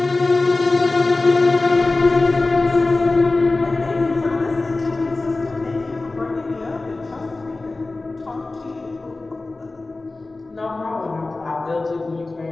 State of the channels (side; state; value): right; quieter; 3.3 dB